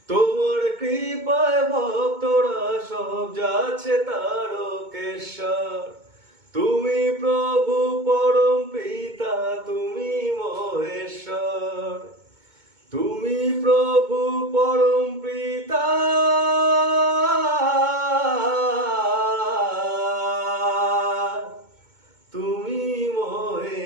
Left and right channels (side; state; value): left; late; 2.2 ms